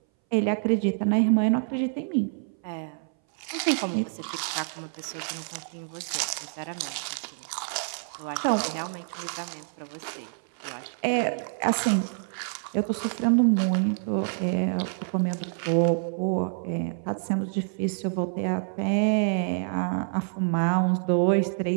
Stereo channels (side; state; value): left; silent; 60 dB below the other